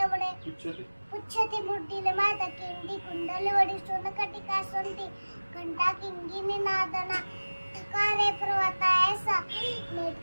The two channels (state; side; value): inverted; both; correlation -1.00